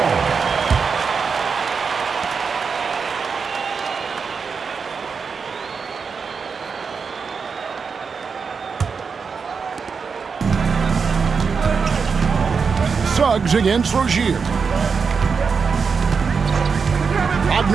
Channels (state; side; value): quieter; left; 5.5 dB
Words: Suggs against Rozier.